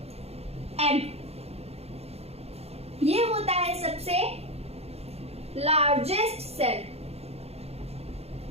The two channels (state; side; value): late; left; 0.30 ms